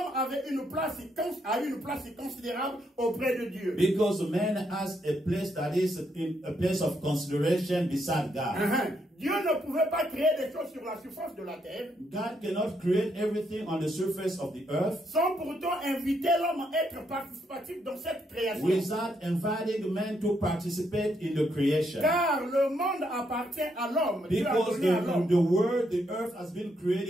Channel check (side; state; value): both; normal; correlation 0.76